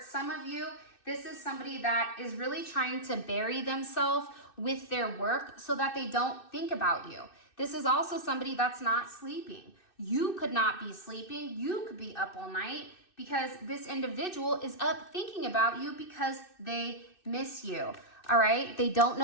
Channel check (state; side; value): late; right; 2.6 ms